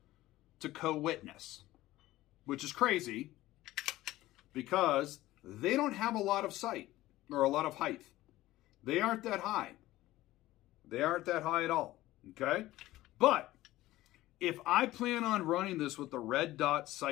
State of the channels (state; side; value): quieter; right; 16.5 dB